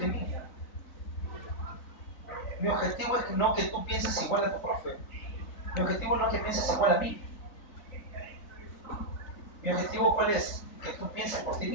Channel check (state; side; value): late; right; 4.0 ms